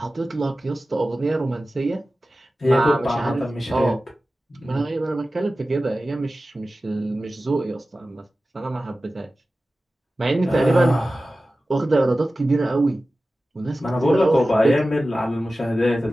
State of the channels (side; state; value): both; normal; correlation 0.95